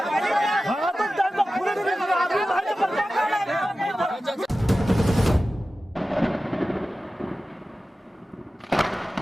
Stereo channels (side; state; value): both; normal; correlation 0.95